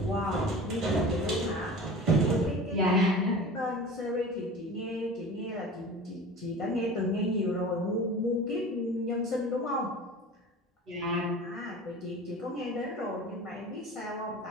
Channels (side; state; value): both; normal; correlation 0.37